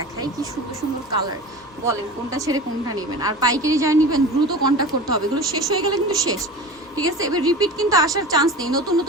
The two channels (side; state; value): both; normal; correlation 0.34